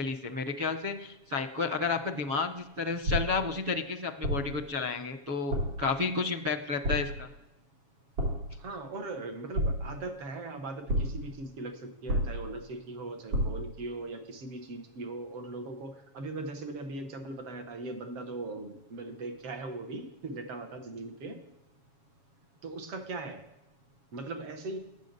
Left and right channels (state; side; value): late; left; 7.2 ms